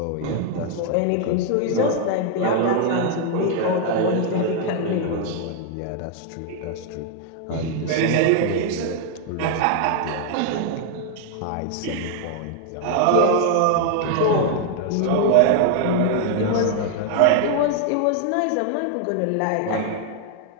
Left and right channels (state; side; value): different; both; correlation 0.00